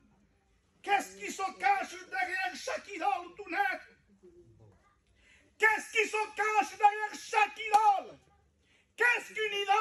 Qu'est-ce qui se cache derrière chaque idole tout net? Qu'est-ce qui se cache derrière chaque idole? Qu'est-ce qu'une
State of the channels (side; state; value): both; identical; correlation 1.00